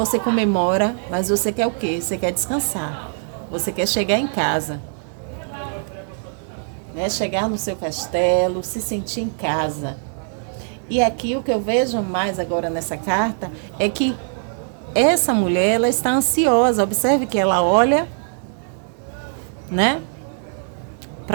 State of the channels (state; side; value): silent; left; 64 dB below the other